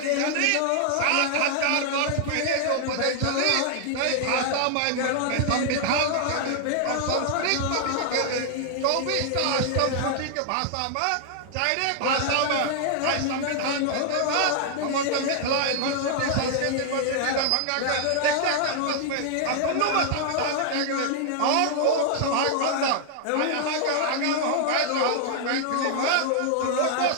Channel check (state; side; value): different; both; correlation 0.00